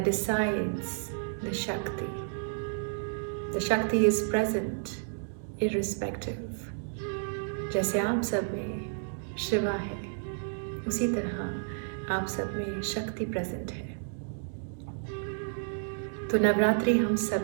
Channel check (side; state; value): left; silent; digital silence